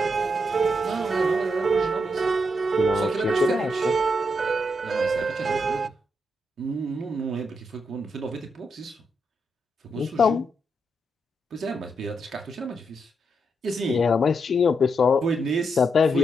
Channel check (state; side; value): normal; both; correlation 0.81